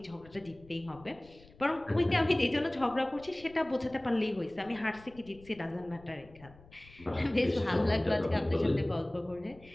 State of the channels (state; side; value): noise; left; rumble, 23 dB below the sound